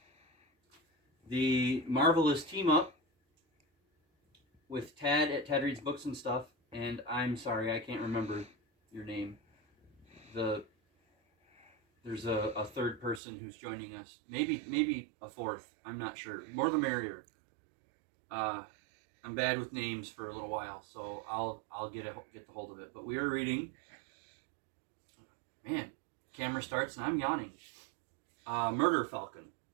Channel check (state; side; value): drops out; left; at 13.2 s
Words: the Marvelous Team Up with Tad at Tad Reads Books and Stuff, and I'm sorry, I can't remember your name. There's a third person who's joining us. Maybe a fourth. I'm not sure. More the merrier. I'm bad with names for a little while, so I'll get the hold of it. But we are reading. Man, camera starts and I'm yawning. Murder Falcon